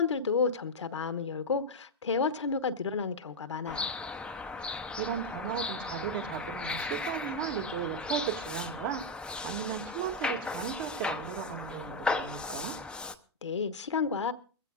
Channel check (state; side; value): normal; both; correlation 0.01